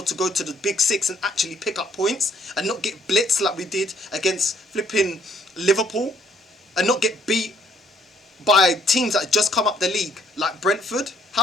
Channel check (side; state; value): both; normal; correlation 0.65